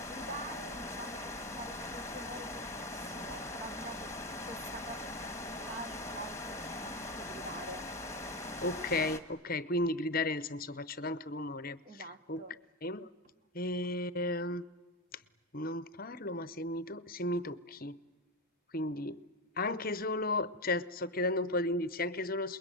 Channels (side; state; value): both; normal; correlation 0.15